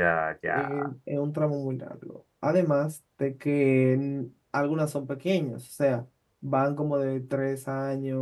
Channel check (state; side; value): identical; both; correlation 1.00